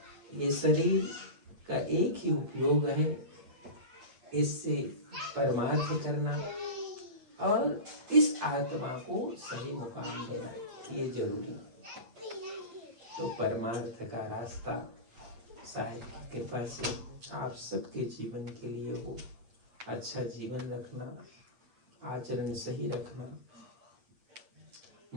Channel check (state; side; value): late; left; 8.7 ms